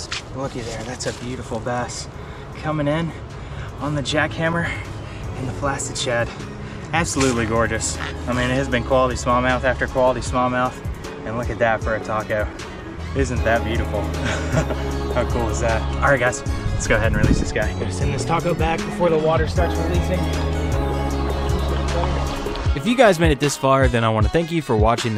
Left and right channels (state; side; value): identical; both; correlation 1.00